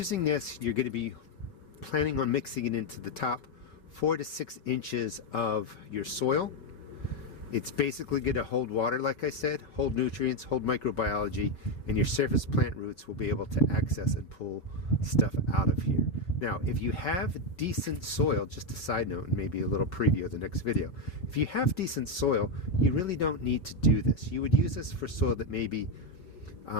this, you're going to be planning on mixing it into the top 4 to 6 inches of your soil. It's basically going to hold water, like I said, hold nutrients, hold microbiology, and your surface plant roots will be able to access and pull stuff out of here. Now, if you have decent soil, just a side note and maybe a little preview of the next video, if you have decent soil, you really don't need to do this. You would use this for soil that maybe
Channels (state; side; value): late; right; 5.4 ms